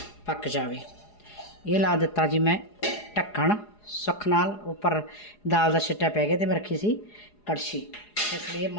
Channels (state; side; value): late; right; 4.8 ms